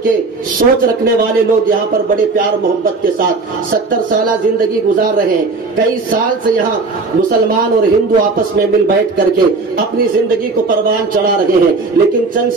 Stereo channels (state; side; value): quieter; left; 3.9 dB